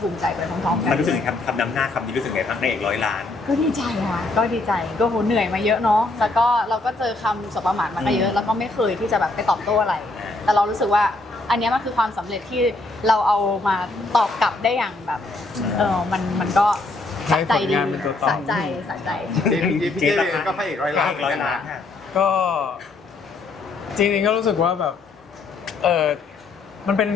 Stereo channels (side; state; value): right; quieter; 3.2 dB